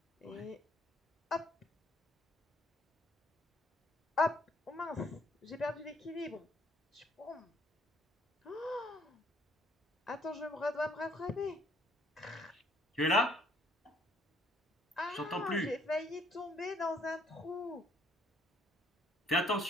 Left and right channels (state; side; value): normal; both; correlation 0.64